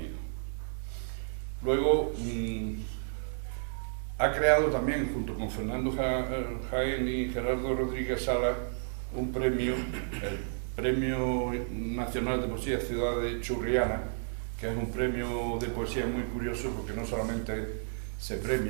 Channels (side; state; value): left; silent; digital silence